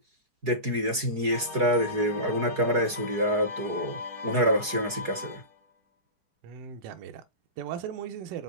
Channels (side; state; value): left; late; 4.7 ms